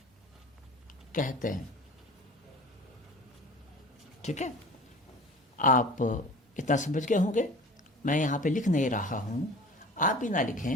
कहते हैं, ठीक है। आप इतना समझ गए होंगे। मैं यहाँ पे लिख नहीं रहा हूँ, आप भी ना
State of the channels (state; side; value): normal; both; correlation 0.41